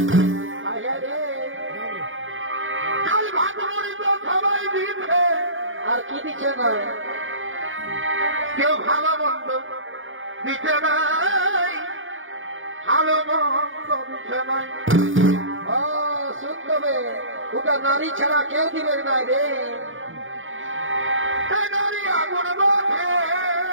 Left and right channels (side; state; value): left; late; 0.57 ms